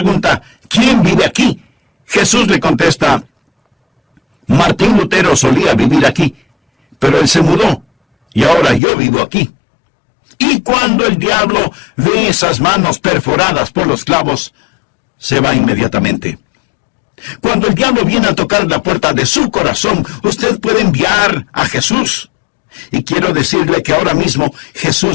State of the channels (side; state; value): right; drops out; at 8.8 s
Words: ¿quién vive aquí?, Jesús le contesta: Martín Lutero solía vivir aquí, pero él se mudó, y ahora yo vivo aquí. Y cuando el diablo ve esas manos perforadas por los clavos, se va inmediatamente. Cuando el diablo viene a tocar la puerta de su corazón, usted puede enviar a Jesús. Y quiero decirle que ahora mismo